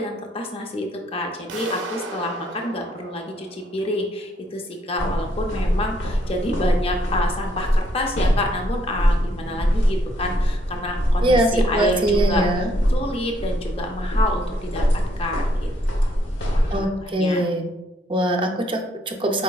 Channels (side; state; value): both; normal; correlation 0.70